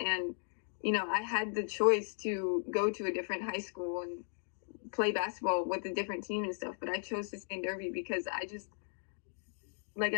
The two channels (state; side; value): silent; right; digital silence